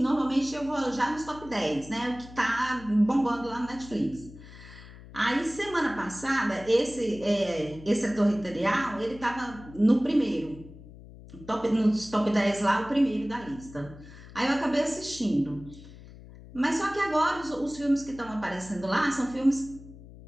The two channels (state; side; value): noise; left; hum, 18 dB below the sound